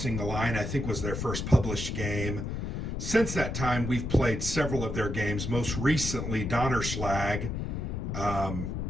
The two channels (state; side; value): noise; left; rumble, 3 dB below the sound